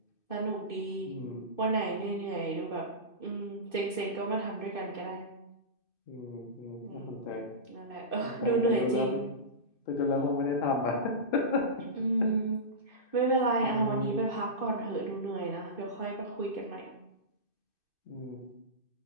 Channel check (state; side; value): late; right; 2.6 ms